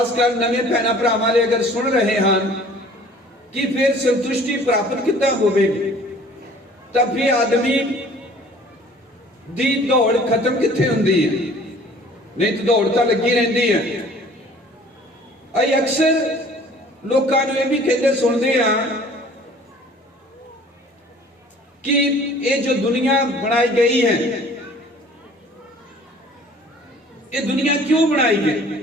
नवे भैणां भरावां ले अगर सुन रहे हैं कि फिर संतुष्टि प्राप्त किद्दां होवेगी, तब भी आदमी दी दौड़ खत्म कित्थे हुंदी है? नहीं तो दौड़ तो लगी रहिंदी है। असीं अक्सर लोकां नूं इह भी कहंदे सुणदे हां कि ये जो दुनिया बनाई गई है, ये दुनिया क्यों बनाई गई,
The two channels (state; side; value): normal; both; correlation 0.51